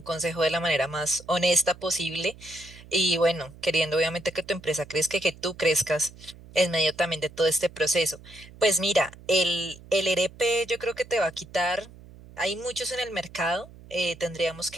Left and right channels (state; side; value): noise; right; hum, 20 dB below the sound